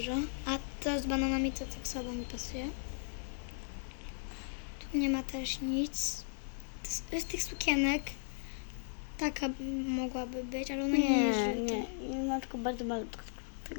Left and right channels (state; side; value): silent; right; digital silence